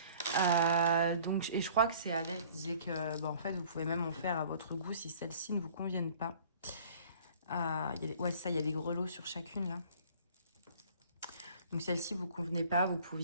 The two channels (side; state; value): both; inverted; correlation -0.51